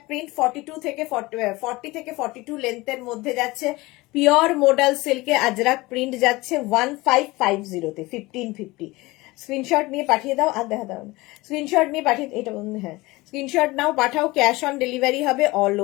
প্রিন্ট 42 থেকে 40 থেকে 42 লেন্থের মধ্যে যাচ্ছে। পিওর মডেল সিল্কে আজরাক প্রিন্ট যাচ্ছে 1550 তে, 1550। স্ক্রিনশট নিয়ে পাঠিয়ে দাও, আর দেখা দাও, স্ক্রিনশট নিয়ে পাঠিয়ে, এটা হ্যাঁ, স্ক্রিনশট নাও, পাঠাও, ক্যাশ অন ডেলিভারি হবে অল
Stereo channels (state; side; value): quieter; right; 21.3 dB